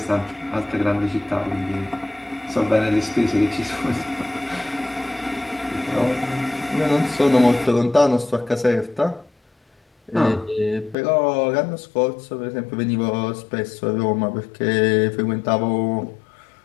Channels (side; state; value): right; drops out; at 11.0 s